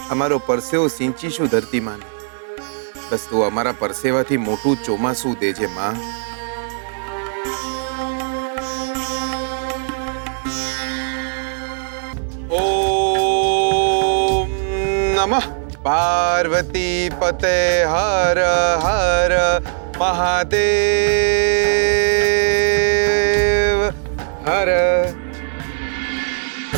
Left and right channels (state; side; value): silent; left; digital silence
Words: અમારો પરસેવો સિંચીશું ધરતી માને. બસ તું અમારા પરસેવાથી મોટું ચોમાસું દેજે માં. ઓમ નમઃ પાર્વતી પતે હર હર મહાદેવ હર.